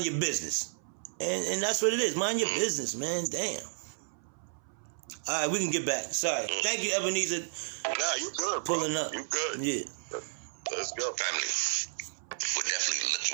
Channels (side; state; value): left; silent; 56 dB below the other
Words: your business. And that's what it is. Mind your business, man. Damn. All right, we can get back. Sorry. Thank you, Ebenezer. Nah, you good, bro. Pulling up. You good. Yeah. Let's go, family. We're definitely